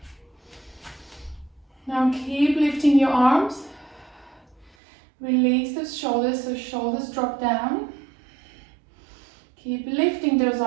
Now keep lifting your arms. Release those shoulders, so shoulders drop down. Keep lifting those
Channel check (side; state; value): left; drops out; at 4.7 s